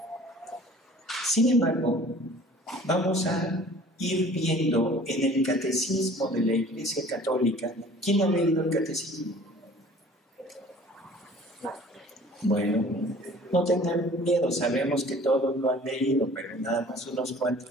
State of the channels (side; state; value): both; normal; correlation 0.49